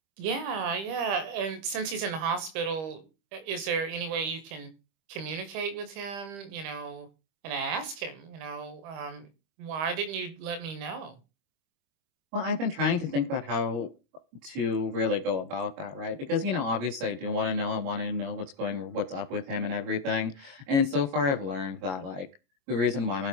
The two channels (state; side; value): late; left; 25 ms